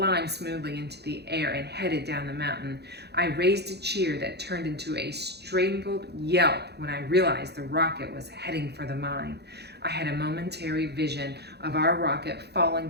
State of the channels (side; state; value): left; late; 0.48 ms